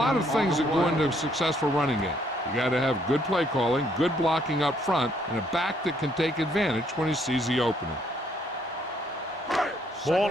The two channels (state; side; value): normal; both; correlation 0.68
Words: of things that go into a successful running game. You got to have good play calling, good blocking up front, and a back that can take advantage when he sees the opening.